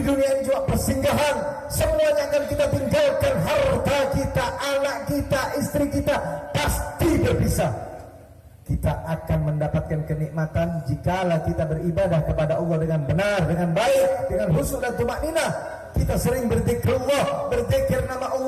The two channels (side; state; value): both; identical; correlation 1.00